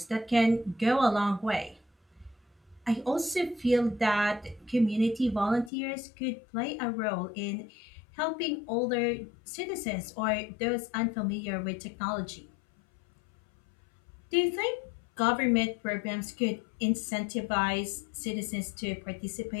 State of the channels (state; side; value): drops out; right; at 5.7 s